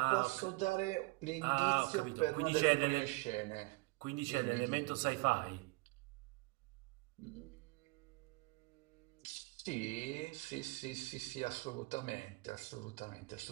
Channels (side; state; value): left; quieter; 25.2 dB